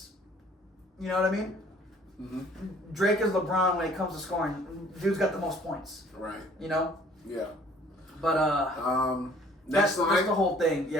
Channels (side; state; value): both; normal; correlation 0.56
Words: You know what I mean? Mm-hmm. Drake is LeBron when it comes to scoring. Dude's got the most points. Right. Yeah. But that's the whole thing. Yeah,